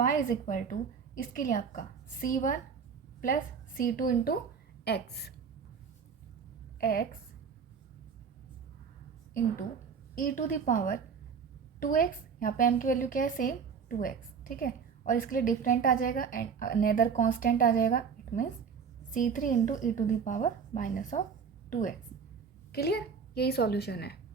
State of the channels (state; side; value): quieter; left; 6.3 dB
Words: is equal to, इसके लिए आपका c1 plus c2 into x into e to the power 2x. यहाँ पे m की वैल्यू क्या है, सेम 2x. ठीक है, और इसके लिए डिफरेंट आ जाएगा एंड अनदर कांस्टेंट आ जाएगा. It means c3 into E to the power minus of 2x. Clear, यही सॉल्यूशन है.